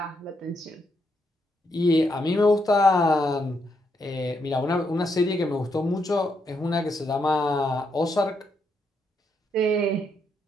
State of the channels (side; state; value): both; normal; correlation 0.78